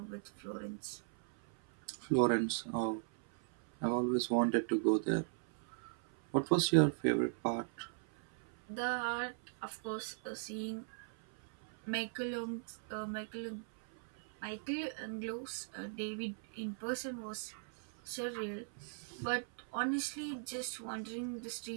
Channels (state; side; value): silent; left; 52 dB below the other